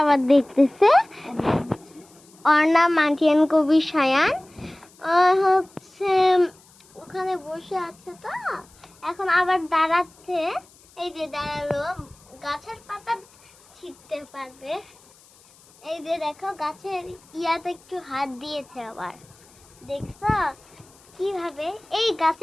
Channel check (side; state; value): left; noise; hiss, 27 dB below the sound